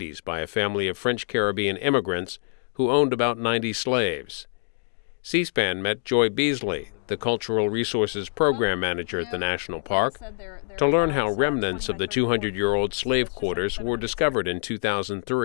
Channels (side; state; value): right; silent; digital silence